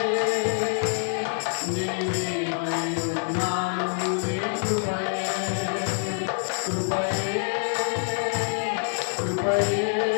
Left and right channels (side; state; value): right; silent; digital silence